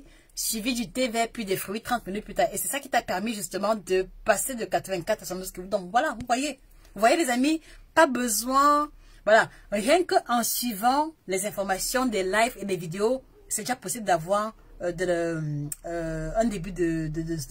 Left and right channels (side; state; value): both; identical; correlation 1.00